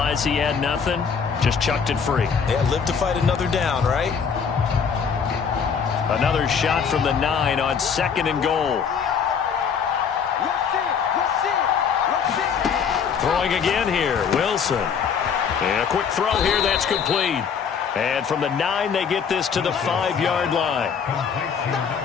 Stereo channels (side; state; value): right; quieter; 6.6 dB